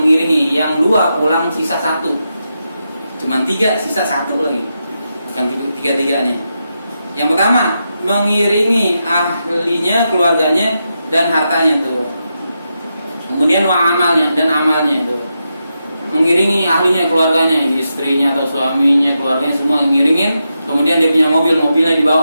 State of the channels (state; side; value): inverted; both; correlation -0.86